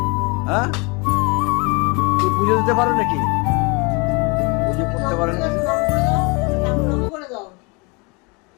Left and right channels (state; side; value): quieter; right; 29.4 dB